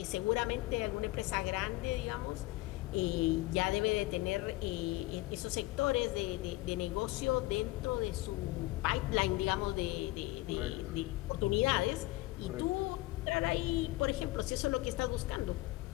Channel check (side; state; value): right; quieter; 19.5 dB